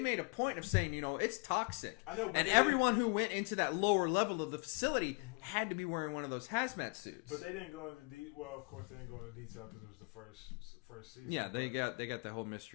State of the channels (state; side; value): quieter; right; 31.9 dB